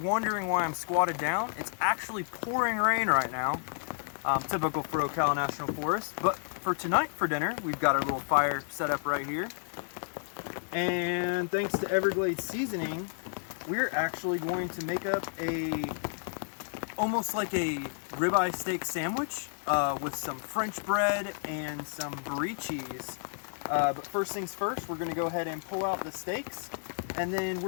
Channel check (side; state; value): right; silent; digital silence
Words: why I'm squatted down, it's actually pouring rain right now. Typical for Ocala National Forest. But for tonight for dinner, we've got our little fire set up right here. And thanks to Everglades Seasoning, we're actually going to make up almost like a ribeye steak sandwich with some French bread and some brie cheese. But first things first, we're going to go ahead and pull out the steaks, and then